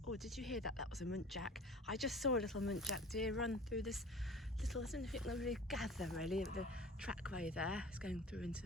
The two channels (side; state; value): both; normal; correlation 0.42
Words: Oh, did you hear that? That was a muntjac. I just saw a little muntjac deer run through this little, I don't know if it can really gather really, of the trackway there. It's going through